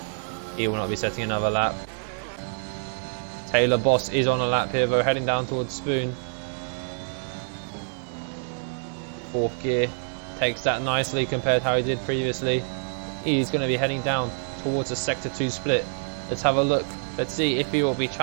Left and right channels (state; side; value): silent; left; 61 dB below the other